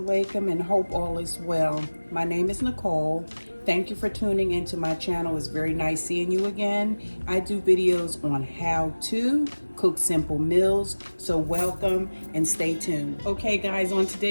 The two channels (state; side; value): inverted; both; correlation -1.00